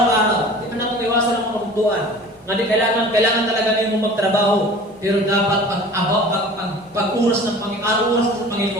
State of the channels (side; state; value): both; normal; correlation 0.43